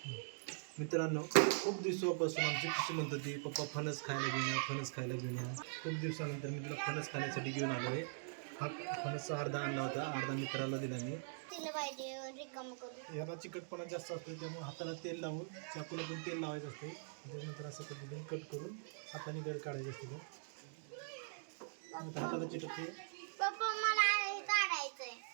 मित्रांनो, खूप दिवसापासून आमची खुशी म्हणत होती पप्पा फणस खायला घेऊन या, फणस खायला घेऊन या. खूप दिवसानंतर मी तुला फणस खाण्यासाठी घेऊन आलो आहे. हा फणस अर्धा आणला होता, अर्धा मित्राला दिला मी. तिला पाहिजे रिकाम करू. याला चिकटपणा जास्त असतो, त्यामुळे हाताला तेल लावून चाकूला पण तेल लावायचं असते. त्याच्यानंतर असं पद्धतीने कट करून हाताने गड काढायचे असते. हाताला चिटकते. पप्पा मला हे काढायचंय.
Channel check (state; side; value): silent; left; digital silence